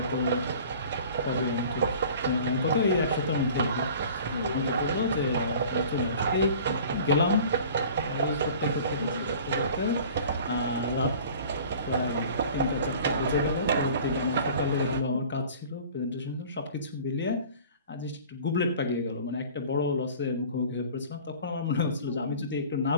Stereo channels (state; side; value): inverted; both; correlation -0.45